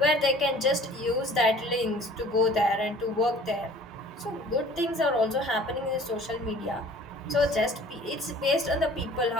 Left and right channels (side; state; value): both; normal; correlation 0.49